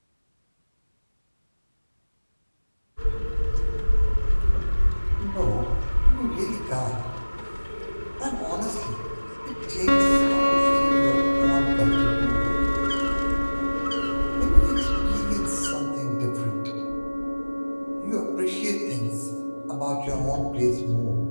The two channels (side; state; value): both; inverted; correlation -1.00